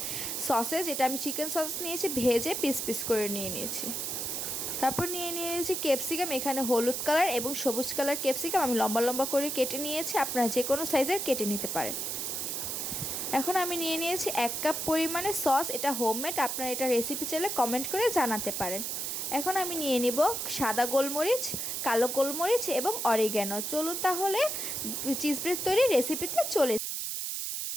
সসেজ, এটা আমি চিকেন সস নিয়েছি, ভেজে পিস পিস করে নিয়ে নিয়েছি। তারপর নিয়ে নিয়েছি ক্যাপসিকাম, এখানে হলুদ কালার এবং সবুজ কালার ক্যাপসিকাম আমি লম্বা লম্বা করে কেটে নিয়েছি, আপনারা যে কোনো সাইজের কেটে নিতে পারেন। এখন আমি নিয়ে নিয়েছি 1 কাপ পরিমাণে সস, এটা হোমমেড, আপনারা এটা রেসিপি চাইলে কমেন্ট করে জানাতে পারেন। এখন আমি নিয়ে নিব সাদা গোলমরিচ, কালো গোলমরিচ এবং অরিগ্যানো। চলুন তাহলে চিজ ব্রেড তৈরি রেসিপিতে চলে।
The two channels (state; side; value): noise; right; hiss, 2 dB below the sound